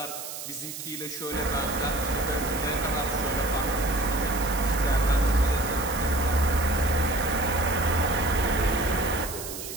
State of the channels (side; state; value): right; noise; hiss, 9 dB below the sound